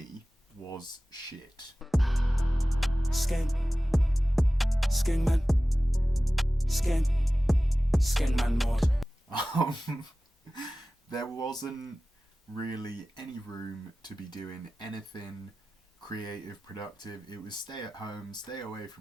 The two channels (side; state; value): both; normal; correlation 0.96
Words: was shit. Skeng, skeng man, skeng man mod. There wasn't really any room to be doing anything creative, productive. It was stay at home, stay away